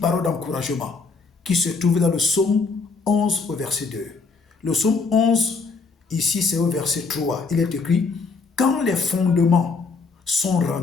d'encouragement qui se trouve dans le psaume 11 au verset 2. Le psaume 11, ici c'est au verset 3. Il est écrit, quand les fondements sont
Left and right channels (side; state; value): right; quieter; 4.4 dB